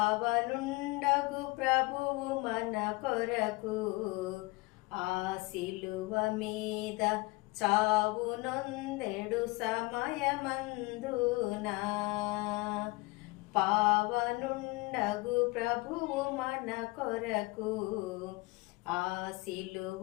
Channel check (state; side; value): quieter; right; 23.8 dB